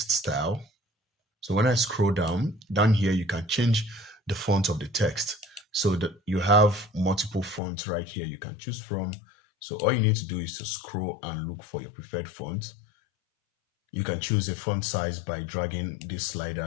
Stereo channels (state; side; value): drops out; right; at 7.6 s